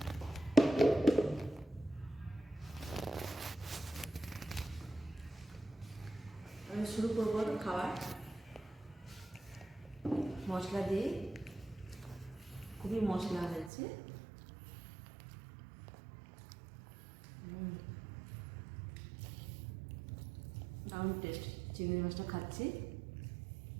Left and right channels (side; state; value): left; drops out; at 13.7 s